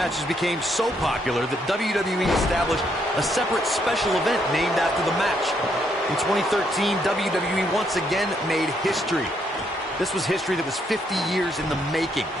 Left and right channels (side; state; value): both; normal; correlation 0.74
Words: became so popular that WWE established a separate special event named after the match. In 2013, WWE once again made history. This was history that was 50 years in the making.